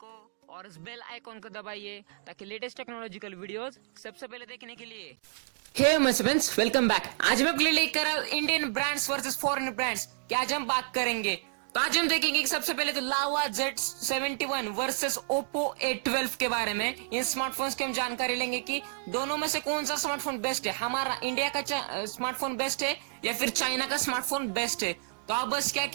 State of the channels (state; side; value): silent; left; digital silence